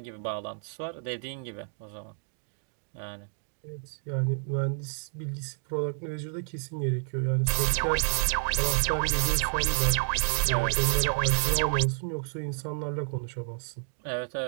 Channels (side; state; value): left; silent; digital silence